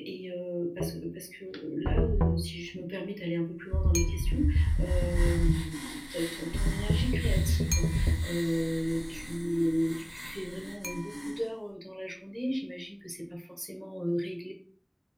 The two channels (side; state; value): both; identical; correlation 1.00